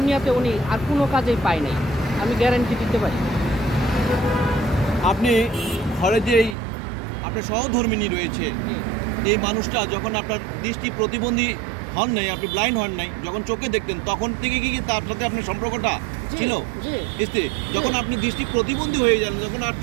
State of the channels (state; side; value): drops out; left; at 6.6 s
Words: উনি আর কোনো কাজেই পায় নাই, আমি গ্যারান্টি দিতে পারি। আপনি ঘরে যেই আপনার সহধর্মিনী রয়েছে, এই মানুষটা যখন আপনার দৃষ্টি প্রতিবন্ধী হন নাই, আপনি ব্লাইন্ড হন নাই, যখন চোখে দেখতেন তখন থেকে কি তার সাথে আপনার সম্পর্কটা ছিল? স্ত্রী যখন আপনি দৃষ্টি প্রতিবন্ধী হয়ে যান, যখন আর